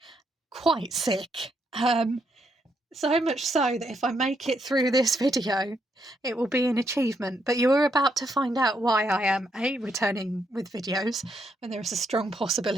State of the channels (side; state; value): both; normal; correlation 0.77